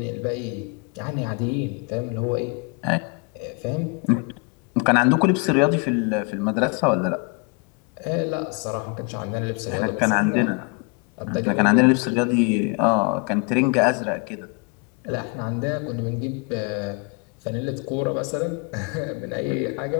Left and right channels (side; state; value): right; quieter; 32.3 dB